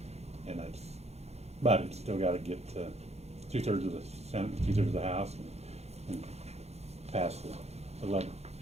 And but it's still gotta get 2/3 of the Senate, 2/3 of the House, and pass the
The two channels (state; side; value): late; left; 0.31 ms